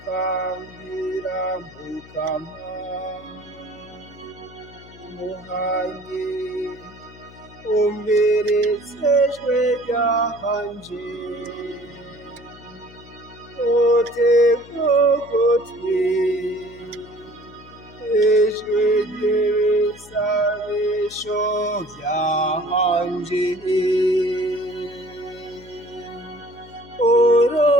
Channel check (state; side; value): noise; left; hum, 21 dB below the sound